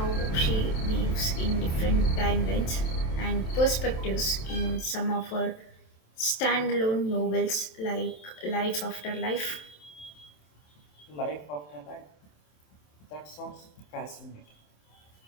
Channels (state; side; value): late; right; 27 ms